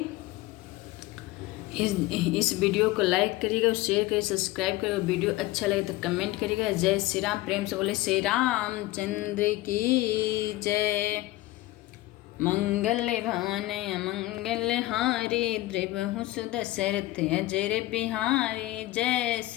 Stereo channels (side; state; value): right; quieter; 18.0 dB